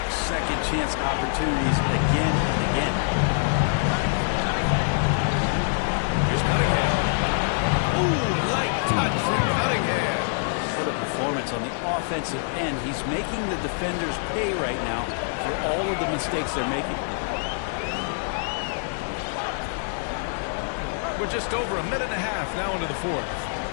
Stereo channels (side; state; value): right; silent; digital silence